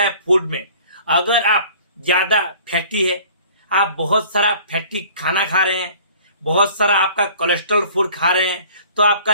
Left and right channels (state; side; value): inverted; both; correlation -0.50